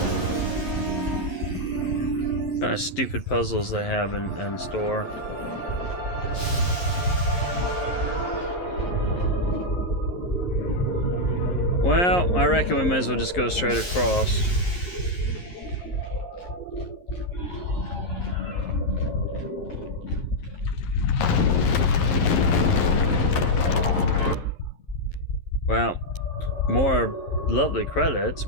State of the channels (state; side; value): late; right; 11 ms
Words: puzzles they have in store. Well, I reckon we may as well just go straight across. Well, more lovely credits.